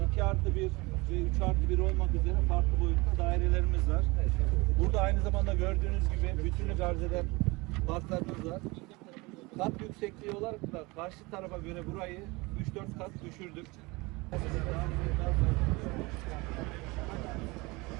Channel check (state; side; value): quieter; left; 24.4 dB